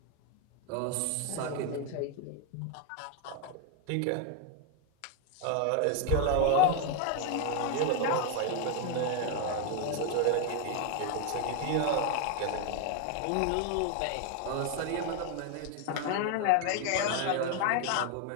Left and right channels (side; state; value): both; different; correlation 0.01